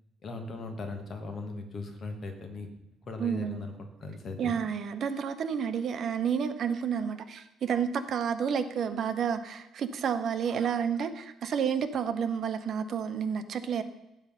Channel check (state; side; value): quieter; left; 6.2 dB